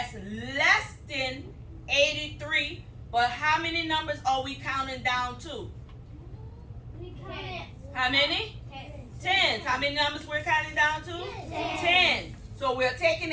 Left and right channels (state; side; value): identical; both; correlation 1.00